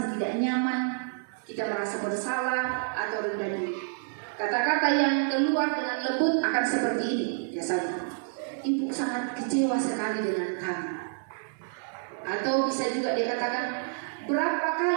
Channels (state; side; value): silent; left; 59 dB below the other